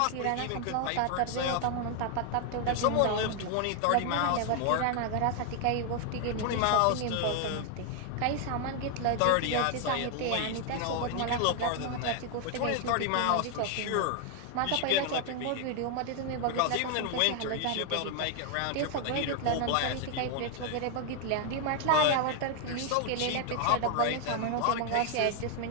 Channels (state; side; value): different; both; correlation 0.00